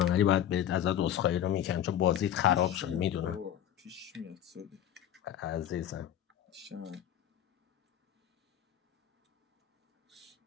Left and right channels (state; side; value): quieter; right; 10.8 dB